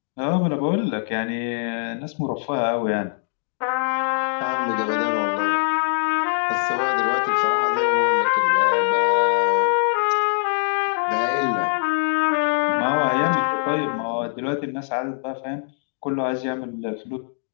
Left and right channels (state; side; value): silent; right; 64 dB below the other